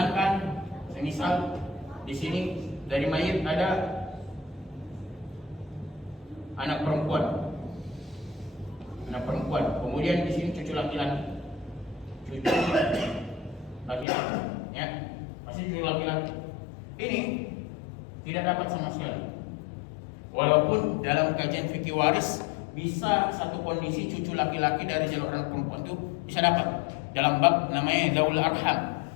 misal di sini dari mayit ada anak perempuan. Anak perempuan. Kemudian di sini cucu laki-laki. Cucu laki-laki, ya. Masih cucu laki-laki. Ini tidak dapat sama sekali. Walaupun dalam kajian fikih waris bisa satu kondisi cucu laki-laki dari jalur anak perempuan itu bisa dapat dalam bab namanya Zaul Arham,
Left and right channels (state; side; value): drops out; right; at 14.1 s